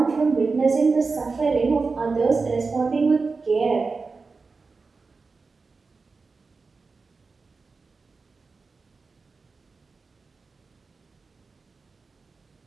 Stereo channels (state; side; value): quieter; left; 4.3 dB